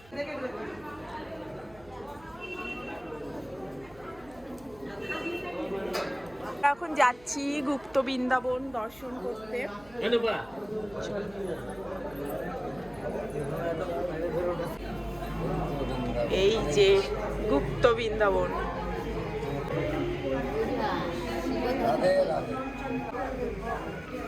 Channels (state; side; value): noise; right; hum, 24 dB below the sound